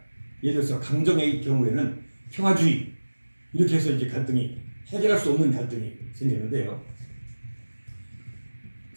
예를 들어서 강정의 경우에는 평화주의 이렇게 해서 이제 갈등이 해결할 수 없는 갈등이 생기는데요.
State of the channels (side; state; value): both; inverted; correlation -1.00